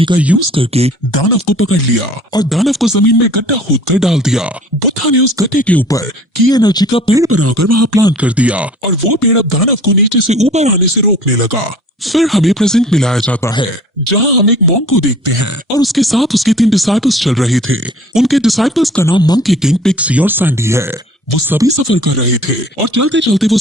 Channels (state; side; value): normal; both; correlation 0.49